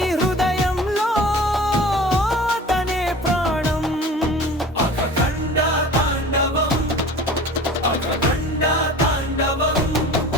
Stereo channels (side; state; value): both; normal; correlation 0.40